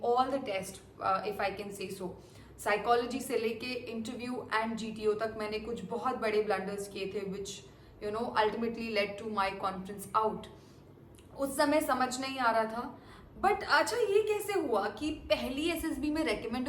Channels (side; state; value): both; identical; correlation 1.00